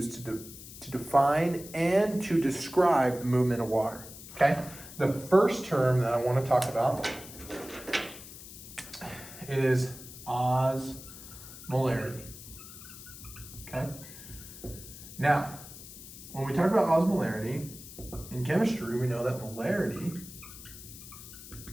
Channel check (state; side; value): noise; left; hiss, 15 dB below the sound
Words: to define and to describe the movement of water, okay? The first term that I want to talk about is osmolarity, okay? Now, when we talk about osmolarity, in chemistry, we know that molarity